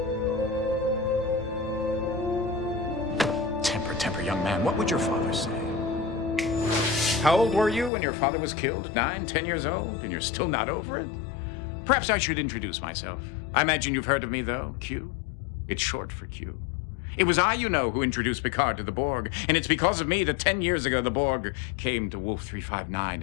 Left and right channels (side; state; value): right; drops out; at 7.9 s